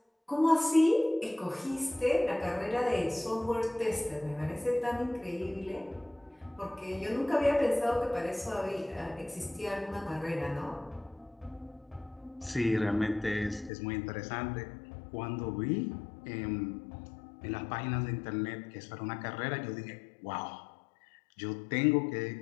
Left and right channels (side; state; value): right; drops out; at 13.7 s